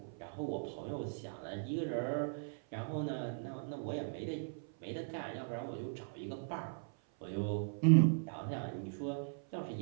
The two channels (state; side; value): silent; left; 52 dB below the other